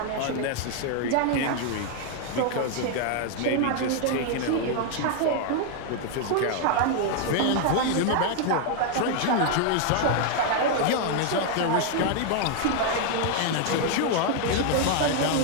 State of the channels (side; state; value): both; different; correlation 0.00